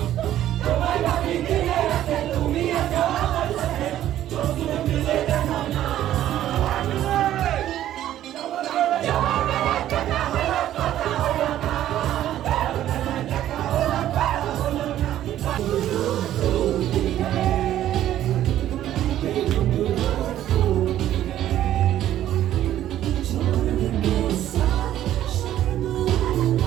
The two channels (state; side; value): quieter; left; 12.4 dB